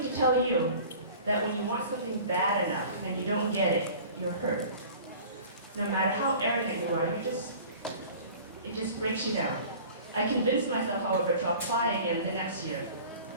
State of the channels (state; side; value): inverted; both; correlation -0.43